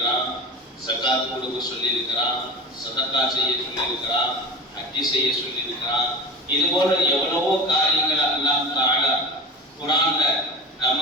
ஸகாத் கொடுக்க சொல்லியிருக்கிறான், சதகா செய்ய சொல்லியிருக்கிறான், ஹஜ் செய்ய சொல்லியிருக்கிறான். இது போல எவ்வளவோ காரியங்கள் அல்லாஹ் தஆலா குர்ஆன்ல நம்ம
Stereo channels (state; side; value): normal; both; correlation 0.31